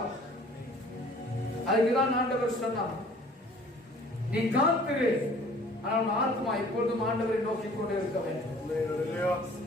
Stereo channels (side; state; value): both; normal; correlation 0.52